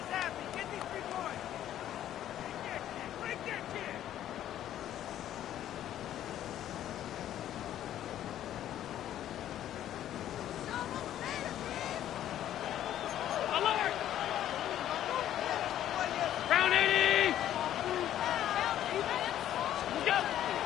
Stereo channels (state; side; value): quieter; right; 11.7 dB